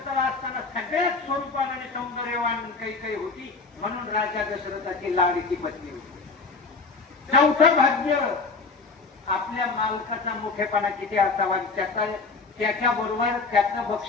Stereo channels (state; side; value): quieter; right; 4.3 dB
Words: असताना सगळ्यात स्वरूपान आणि सौंदर्यवान कैकेयी होती म्हणून राजा दशरथाची लाडकी पत्नी होती. चौथं भाग्य आपल्या मालकाचा मोठेपणा किती असावा, त्याच्या बरोबर त्याचं